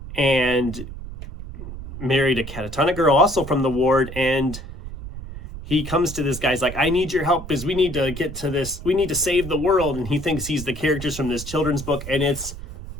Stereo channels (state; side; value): noise; right; rumble, 11 dB below the sound